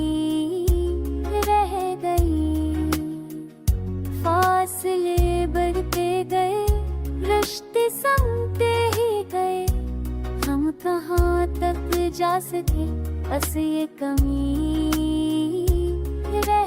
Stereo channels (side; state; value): both; identical; correlation 1.00